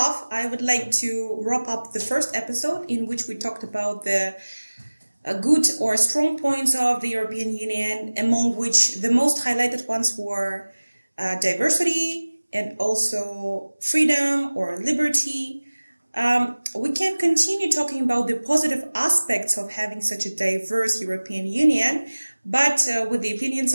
I would like to wrap up the first episode in which we talked about the good or strong points of the European Union, among which the most highlighted ones were diversity and also freedom or liberty. We can continue talking about the positive aspects of having such a diverse European Union, but with the opinions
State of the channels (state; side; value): inverted; both; correlation -1.00